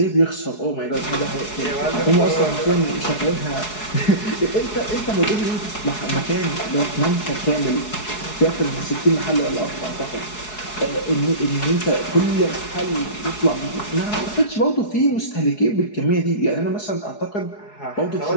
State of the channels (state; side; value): late; right; 4.7 ms